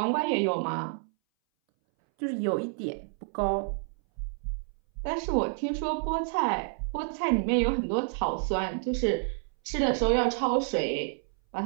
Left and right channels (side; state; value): left; silent; 59 dB below the other